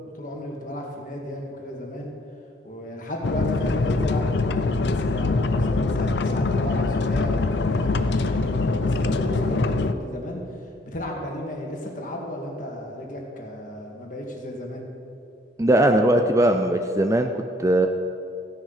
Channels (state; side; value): normal; both; correlation 0.63